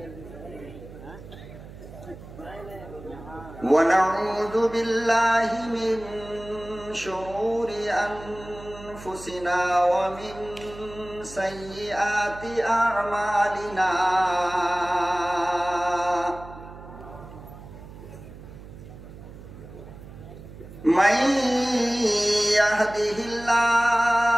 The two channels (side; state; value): right; noise; hum, 16 dB below the sound